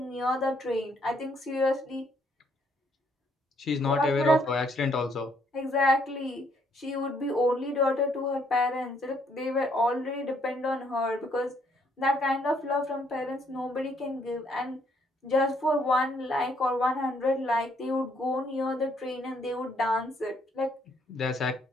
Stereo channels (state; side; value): normal; both; correlation 0.69